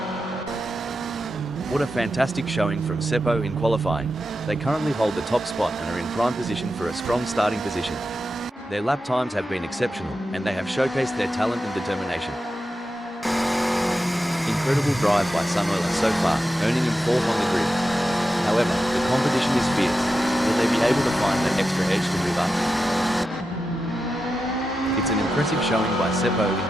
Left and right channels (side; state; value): both; normal; correlation 0.89